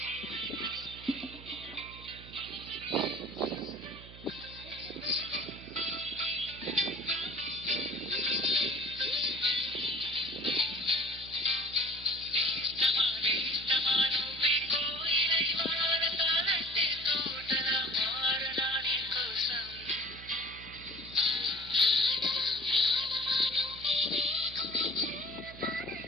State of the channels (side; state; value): right; noise; hum, 16 dB below the sound